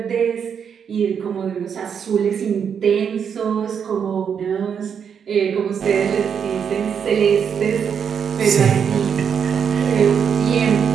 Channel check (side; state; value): left; quieter; 7.4 dB